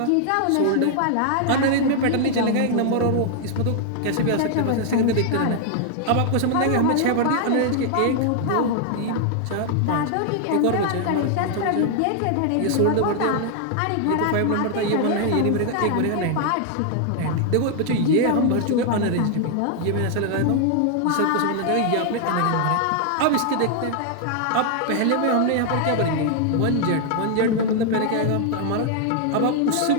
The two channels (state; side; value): different; both; correlation 0.00